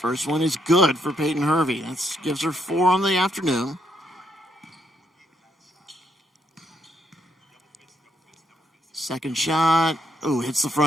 First one is good for Peyton Hervey. That gives her 4 on the afternoon. Second shot. Oh, hits the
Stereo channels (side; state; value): both; normal; correlation 0.75